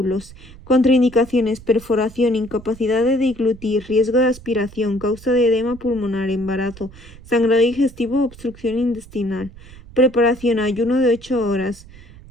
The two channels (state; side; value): noise; right; rumble, 20 dB below the sound